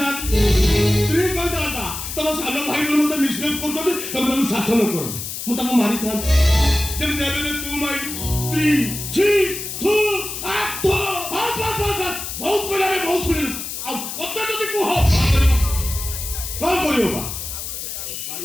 ସ୍ତ୍ରୀ କହିଥାନ୍ତା ତମ ସାନ ଭାଇ ମତେ ମିସବିହେଭ କରୁଛନ୍ତି ତମେ ତାଙ୍କୁ ଶାସନ କର ମୁଁ ତାଙ୍କୁ ମାରିଥାନ୍ତି। ଯେମିତି ଏବେ ତୁ ମାଇ ସ୍ତ୍ରୀ ଛି ତୁ ବହୁତ କହିଲା ବହୁତ ଶୁଣିଲୁ ଆଉ କଥା ଯଦି କୁହ କଣ କରିବ ବା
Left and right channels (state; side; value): noise; left; hiss, 7 dB below the sound